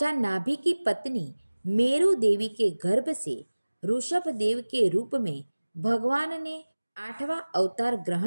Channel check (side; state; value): both; inverted; correlation -1.00